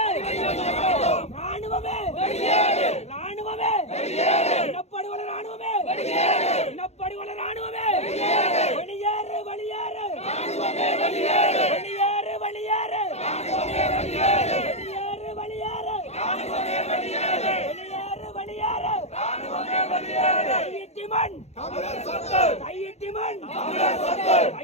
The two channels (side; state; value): right; late; 0.31 ms